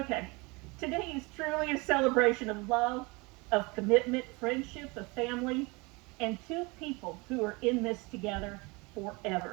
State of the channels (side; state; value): left; quieter; 26.5 dB